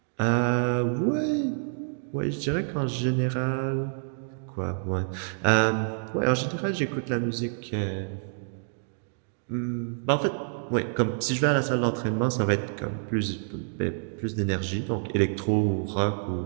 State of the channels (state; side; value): silent; left; digital silence